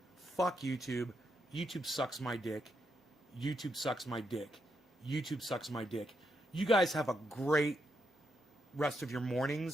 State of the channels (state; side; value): normal; both; correlation 0.81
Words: Fuck YouTube. YouTube sucks my dick. YouTube sucks my dick. YouTube sucks my dick. You guys have a great rest of your